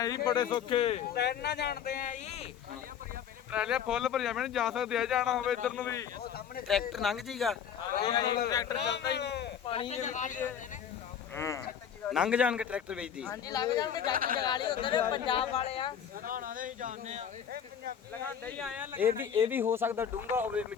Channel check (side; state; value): right; quieter; 8.4 dB